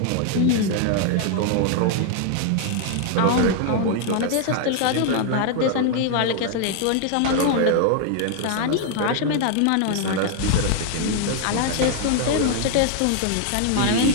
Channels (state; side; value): different; both; correlation 0.00